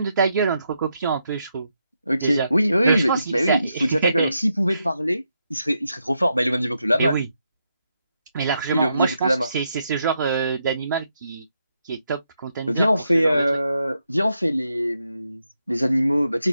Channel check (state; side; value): inverted; both; correlation -0.81